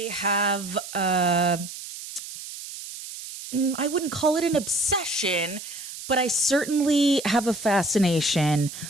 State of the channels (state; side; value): noise; right; hiss, 11 dB below the sound